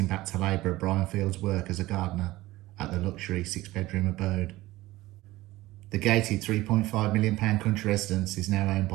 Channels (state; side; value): quieter; left; 18.0 dB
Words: back to labourer Brian Field's work as a gardener at the luxury 6-bedroom abode. The gated £3.5 million country residence is now owned